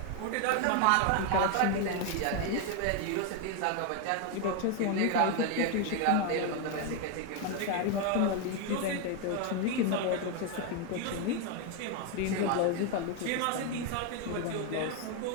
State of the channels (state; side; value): different; both; correlation 0.01